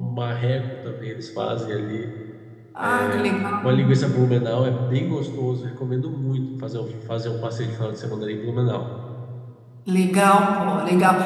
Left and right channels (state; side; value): identical; both; correlation 1.00